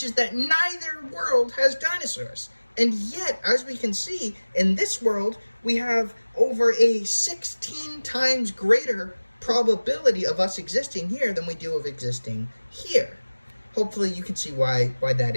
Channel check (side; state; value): both; inverted; correlation -1.00